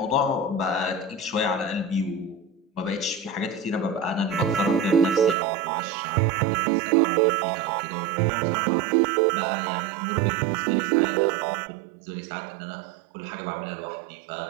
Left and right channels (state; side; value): drops out; left; at 5.4 s